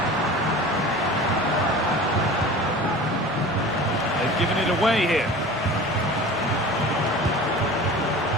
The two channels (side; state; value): left; noise; rumble, 22 dB below the sound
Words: They've given it away here.